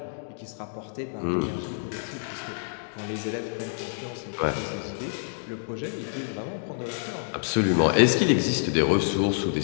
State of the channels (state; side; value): silent; right; digital silence